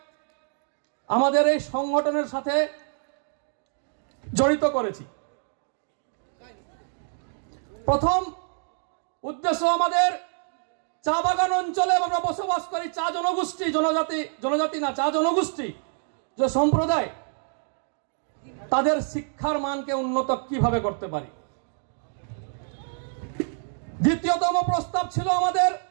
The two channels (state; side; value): silent; left; 60 dB below the other